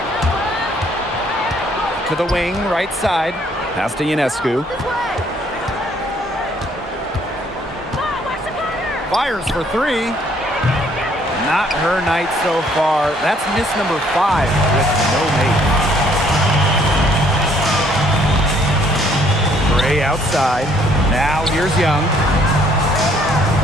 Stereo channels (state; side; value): normal; both; correlation 0.64